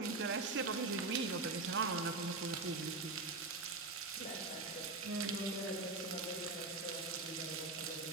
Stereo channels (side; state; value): left; quieter; 3.5 dB